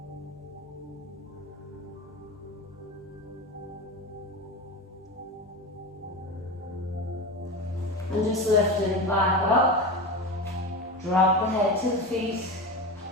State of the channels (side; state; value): both; normal; correlation 0.24